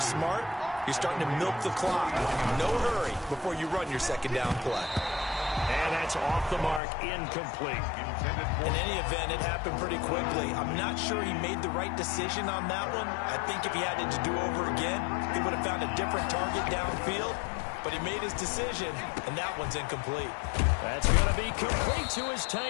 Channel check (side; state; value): right; drops out; at 6.8 s